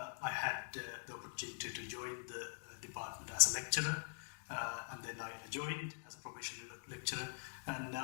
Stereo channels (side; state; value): right; silent; digital silence